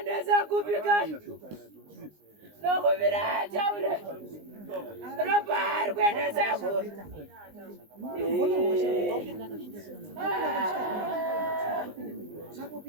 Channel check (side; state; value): left; late; 19 ms